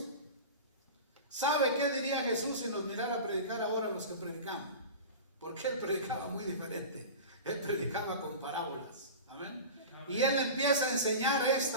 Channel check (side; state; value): both; inverted; correlation -0.32